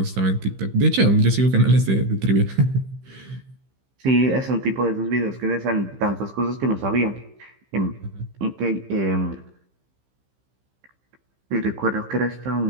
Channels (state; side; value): late; left; 15 ms